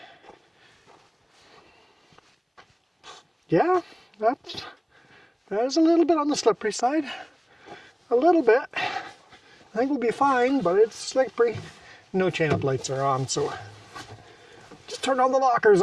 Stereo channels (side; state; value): both; identical; correlation 1.00